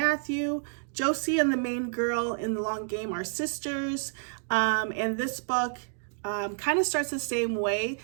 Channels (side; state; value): left; silent; digital silence